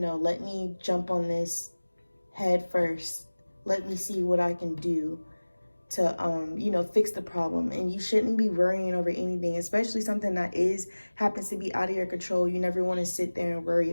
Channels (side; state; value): both; inverted; correlation -1.00